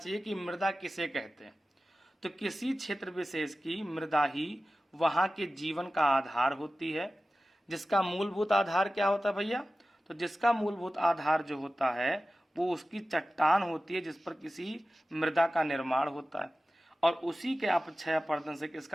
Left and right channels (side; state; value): both; normal; correlation 0.95